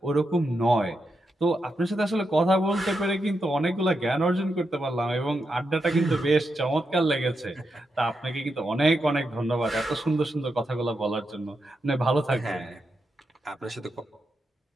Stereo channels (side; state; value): both; normal; correlation 0.85